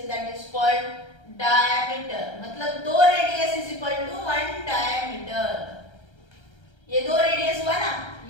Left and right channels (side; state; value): right; late; 1.3 ms